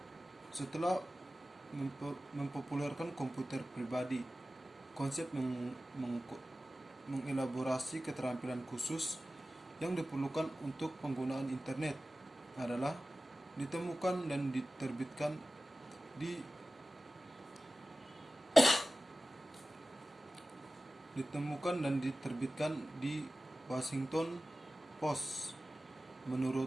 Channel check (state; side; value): normal; both; correlation 0.95